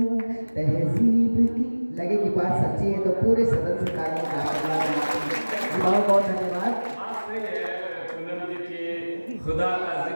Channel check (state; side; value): inverted; both; correlation -1.00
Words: तहजीब की। लगे कि बात सच्ची है तो पूरे सदन से तालियां बहुत बहुत धन्यवाद। बात सही है पूनम जी की खुदा का